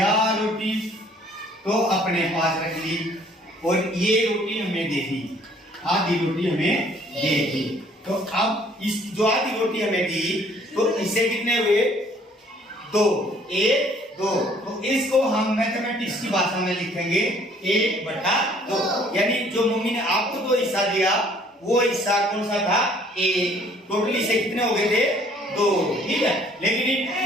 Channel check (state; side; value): normal; both; correlation 0.59